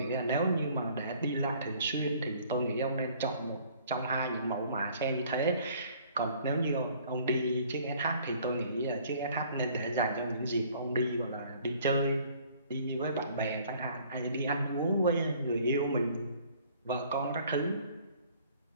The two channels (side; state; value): both; inverted; correlation -0.56